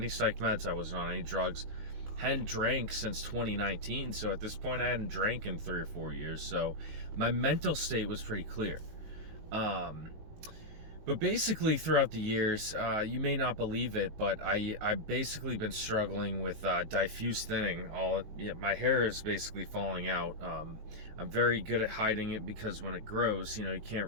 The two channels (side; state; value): left; late; 19 ms